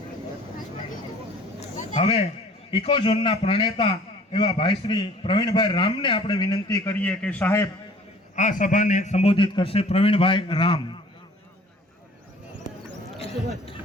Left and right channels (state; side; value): normal; both; correlation 0.50